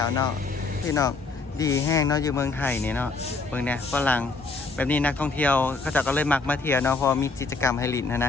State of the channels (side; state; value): right; quieter; 3.9 dB